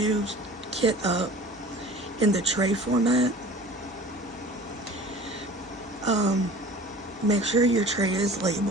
kit up in the tray format, make sure your tray is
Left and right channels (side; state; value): both; normal; correlation 0.43